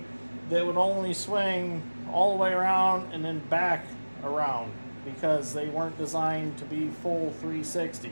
that would only swing all the way around and then back around, because they weren't designed to be full 360,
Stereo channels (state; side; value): inverted; both; correlation -1.00